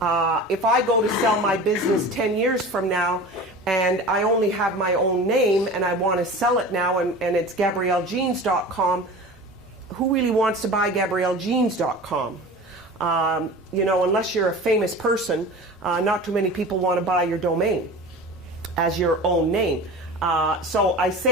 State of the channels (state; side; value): normal; both; correlation 0.36